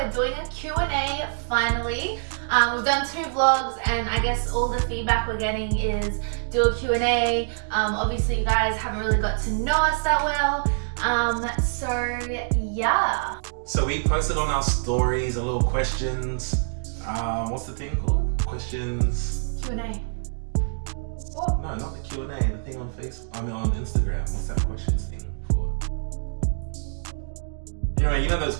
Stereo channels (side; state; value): left; silent; digital silence